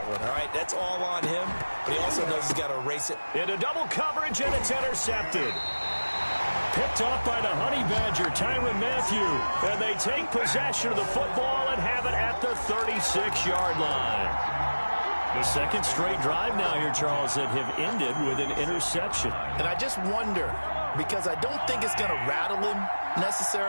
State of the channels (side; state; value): both; inverted; correlation -1.00